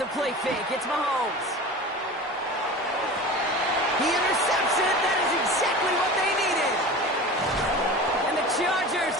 play fake, it's Mahomes. He intercepts it. That is exactly what they needed. And the Chargers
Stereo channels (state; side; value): normal; both; correlation 0.34